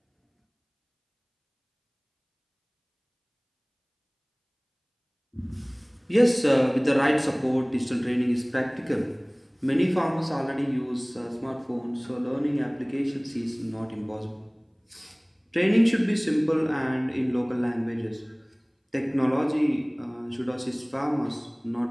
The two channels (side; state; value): both; identical; correlation 1.00